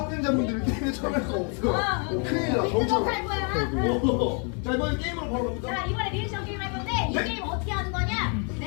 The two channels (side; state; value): right; quieter; 38.7 dB